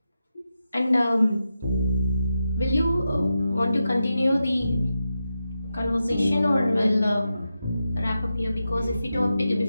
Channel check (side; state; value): both; inverted; correlation -0.89